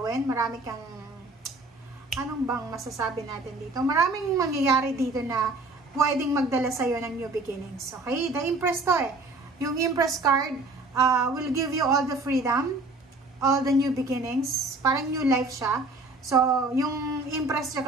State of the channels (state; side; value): quieter; left; 3.2 dB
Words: marami kang anong bang masasabi natin dito? Maraming mangyayari dito na pwedeng magdala sa'yo ng new beginnings. Okay? The Empress to Yung Empress card will give you all the freedom, all the new beginnings. Parang new life siya. So, yung Empress